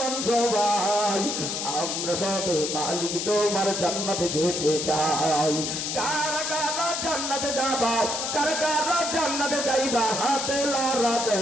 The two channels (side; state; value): left; noise; hiss, 2 dB below the sound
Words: সবাই, আমরা সবে মালিক তোমার জান্নাতে যেতে চাই। কারা কারা জান্নাতে যাবা, কারা কারা জান্নাতে যাইবা, হাতে লড়া দেন